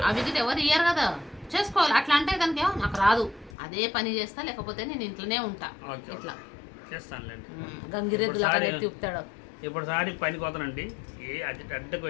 అవి ఎవరు ఇయ్యారు కదా. చేసుకోవాలి. అట్లా అంటే కనుక నాకు రాదు, అదే పని చేస్తా, లేకపోతే నేను ఇంట్లోనే ఉంటా. ఇట్లా గంగిరెద్దులు అక్కడ ఎత్తిపుతాడు. ఇప్పుడు సారి పనికి పోతానండి. అడ్డకు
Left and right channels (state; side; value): drops out; right; at 3.6 s